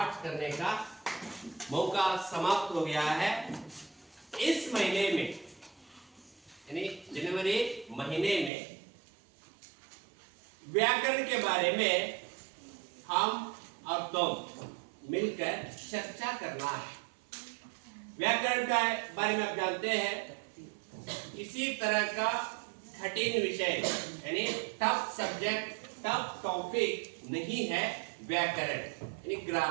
करने का मौका समाप्त हो गया है। इस महीने में यानी जनवरी महीने में व्याकरण के बारे में हम और तुम मिलकर चर्चा करना है। व्याकरण के बारे में आप जानते हैं, इसी तरह का कठिन विषय यानी टफ सब्जेक्ट, टफ टॉपिक नहीं है व्याकरण यानी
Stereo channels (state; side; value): drops out; left; at 8.5 s